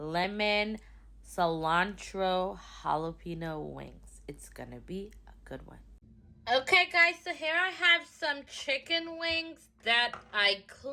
cilantro jalapeno wings. It's going to be a good one. Okay guys, so here I have some chicken wings that I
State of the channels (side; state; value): both; identical; correlation 1.00